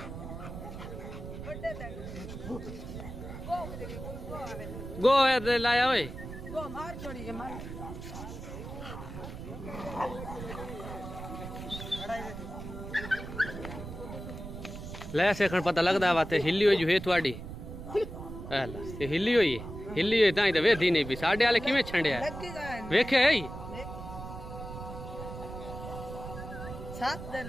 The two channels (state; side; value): noise; right; rumble, 10 dB below the sound